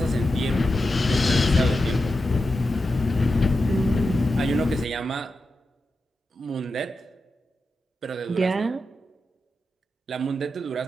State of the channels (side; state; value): both; normal; correlation 0.90